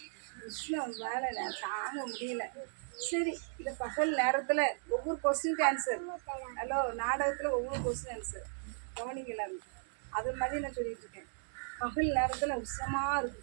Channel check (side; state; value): left; silent; digital silence